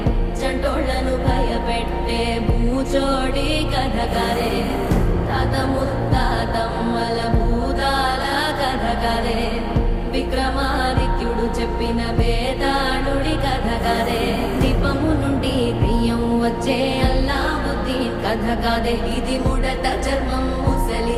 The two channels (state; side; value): identical; both; correlation 1.00